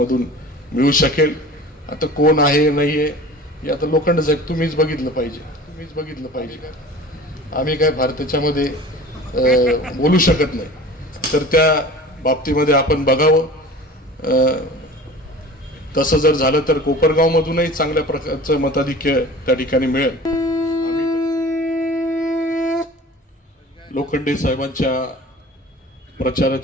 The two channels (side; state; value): both; normal; correlation 0.41